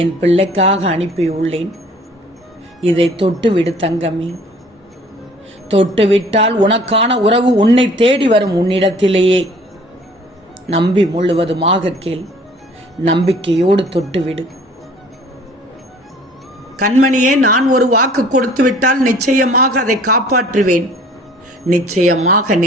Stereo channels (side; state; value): both; normal; correlation 0.52